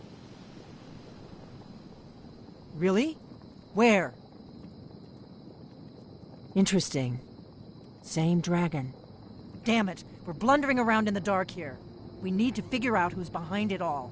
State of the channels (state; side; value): identical; both; correlation 1.00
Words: Really? Where? Interesting. Same dragon. Damn it, we're blundering around in the dark here. We need to figure out who's behind it all.